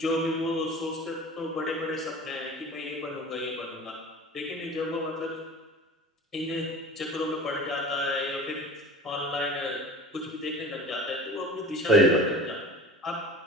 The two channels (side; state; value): both; normal; correlation 0.38